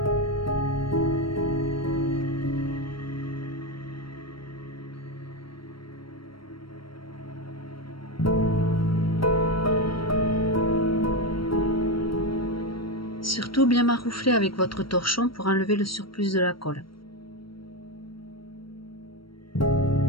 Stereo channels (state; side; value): late; right; 0.74 ms